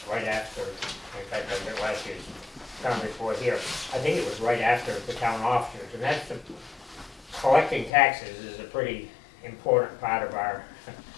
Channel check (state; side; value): drops out; right; at 7.9 s